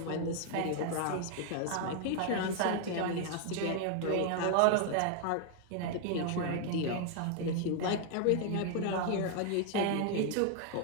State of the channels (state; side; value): different; both; correlation 0.00